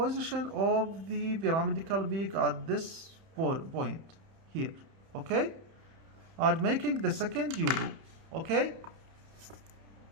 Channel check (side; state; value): left; late; 30 ms